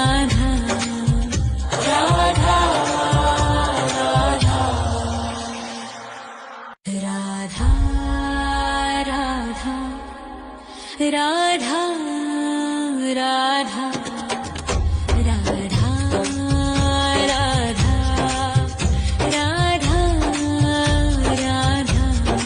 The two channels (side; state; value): both; identical; correlation 1.00